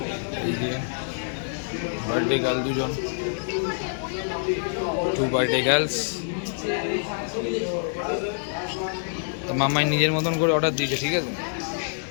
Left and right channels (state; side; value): silent; right; digital silence